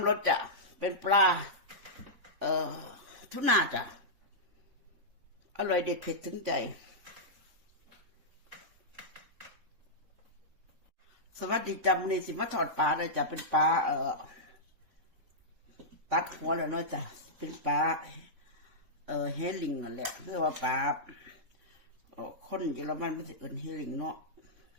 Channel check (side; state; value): left; late; 4.0 ms